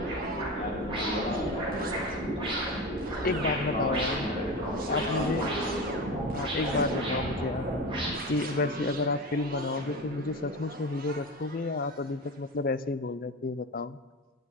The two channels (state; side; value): normal; both; correlation 0.26